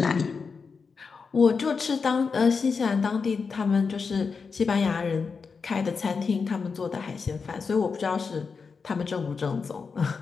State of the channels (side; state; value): right; quieter; 5.2 dB